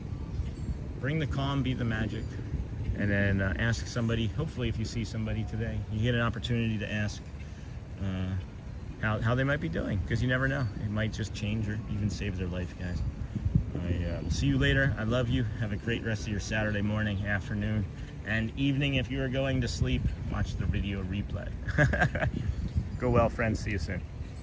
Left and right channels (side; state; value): both; identical; correlation 1.00